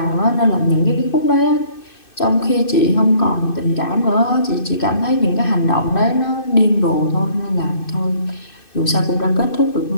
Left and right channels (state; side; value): late; right; 2.6 ms